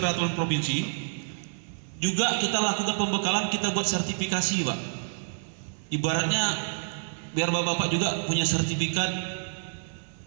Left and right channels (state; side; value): silent; left; digital silence